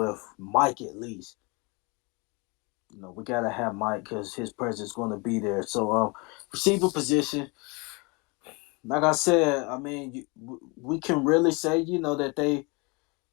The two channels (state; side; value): quieter; right; 29.0 dB